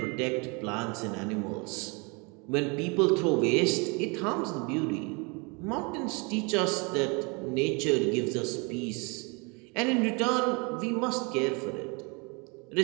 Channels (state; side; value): quieter; left; 30.6 dB